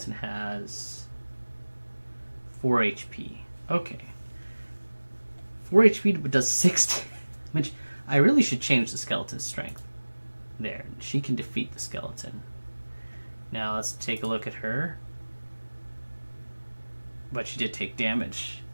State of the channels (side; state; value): both; inverted; correlation -1.00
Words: has 4 HP. Okay. 4 HP but does 6 damage. I really should change the skeleton's strength. There. She can defeat the skeleton. Now let's take a look at her. But she did take damage.